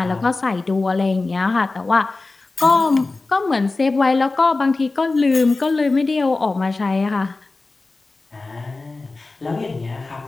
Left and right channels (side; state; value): right; quieter; 3.5 dB